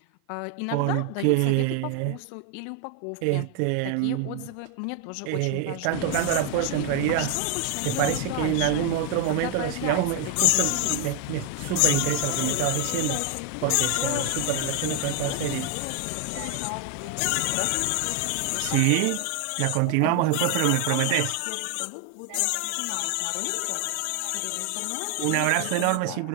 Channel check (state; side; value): different; both; correlation 0.01